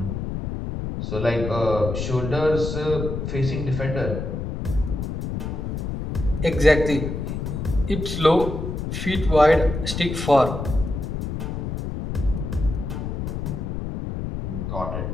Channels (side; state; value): left; noise; rumble, 4 dB below the sound